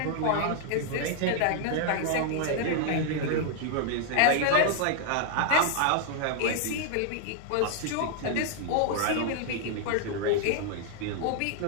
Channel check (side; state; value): both; different; correlation 0.00